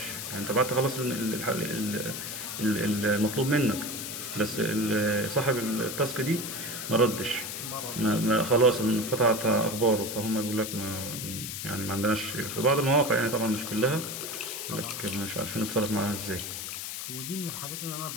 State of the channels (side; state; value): left; noise; hiss, 6 dB below the sound